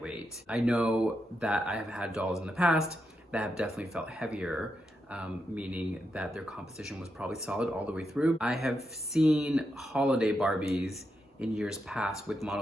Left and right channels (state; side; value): normal; both; correlation 0.85